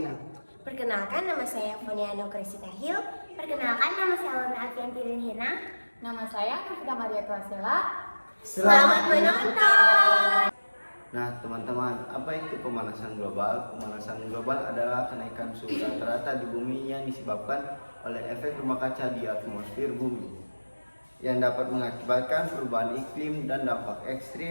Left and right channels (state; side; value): inverted; both; correlation -1.00